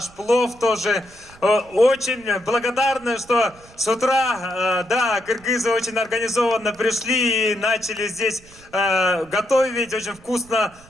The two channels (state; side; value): noise; right; rumble, 24 dB below the sound